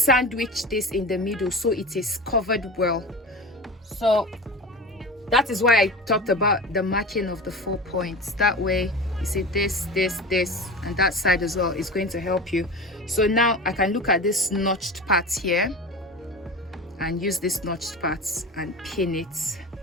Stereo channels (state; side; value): normal; both; correlation 0.30